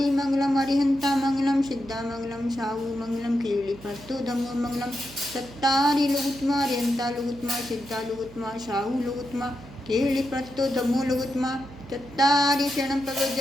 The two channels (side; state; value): right; noise; hum, 18 dB below the sound